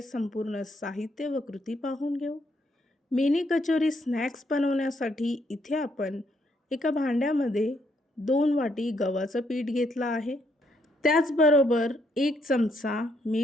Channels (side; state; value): both; normal; correlation 0.73